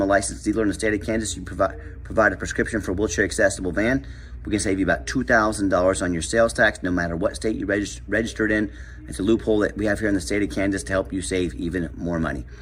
a licensed dealer in the state of Kansas, you provide a prescription for a wheelchair accessible van. We can save you about $2,000 on your sales tax, no matter what state you registered in. It's a loophole that we have here in the state of Kansas to help you save even more money.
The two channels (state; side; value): identical; both; correlation 1.00